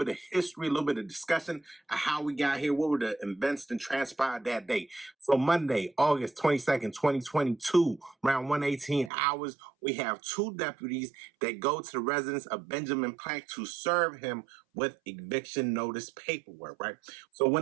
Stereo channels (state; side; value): drops out; left; at 9.1 s